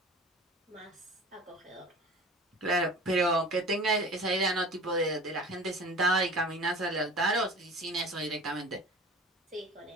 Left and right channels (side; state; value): both; normal; correlation 0.40